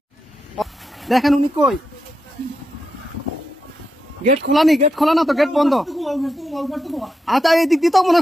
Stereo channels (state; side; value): normal; both; correlation 0.85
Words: দেখেন উনি কই গেট খোলা নি গেট খোলা না তো গেট বন্ধ আচ্ছা এই দিক দিয়ে তো মনে